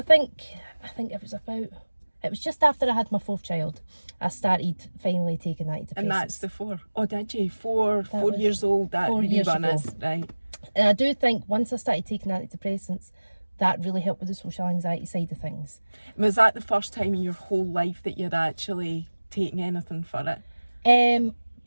think it was just after I had my 4th child, I started finally taking antidepressants. And that's the 4. Oh, did you? 4 years old. That 4 years ago. Right. And I do think once I started taking antidepressants, that really helped with the social anxiety side of things. Was that the first time in your whole life that you'd actually taken anything for it?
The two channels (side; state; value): both; inverted; correlation -1.00